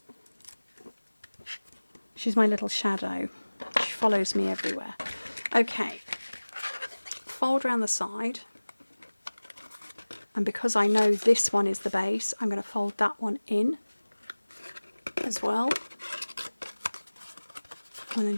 She's my little shadow. She follows me everywhere. Okay, fold around the side. And because I know this one is the base, I'm going to fold that one in as well. And then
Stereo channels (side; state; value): both; inverted; correlation -1.00